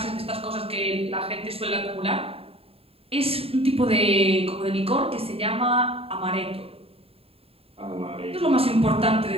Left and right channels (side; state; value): left; late; 0.28 ms